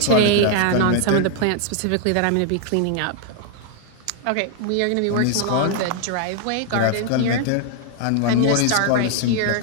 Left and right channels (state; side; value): different; both; correlation 0.00